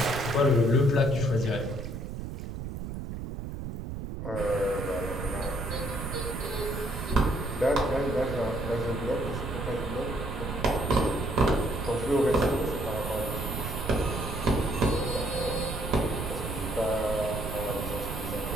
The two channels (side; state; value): right; noise; rumble, 6 dB below the sound